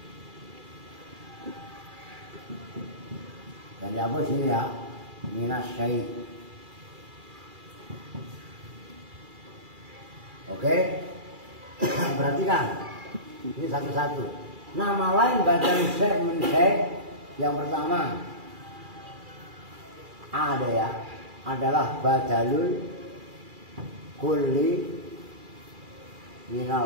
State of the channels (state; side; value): late; left; 2.4 ms